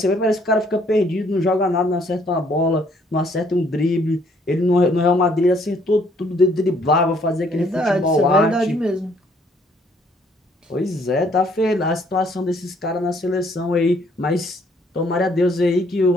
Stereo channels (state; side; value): normal; both; correlation 0.64